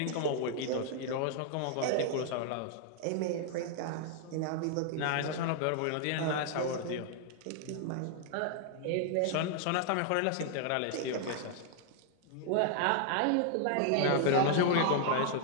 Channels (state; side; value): different; both; correlation 0.00